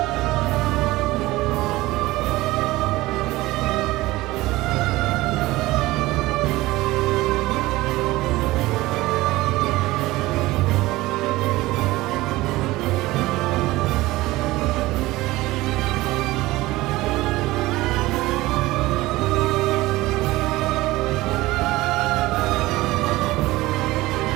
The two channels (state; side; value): quieter; left; 18.7 dB